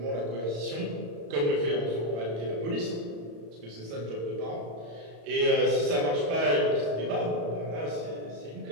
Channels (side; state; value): left; late; 35 ms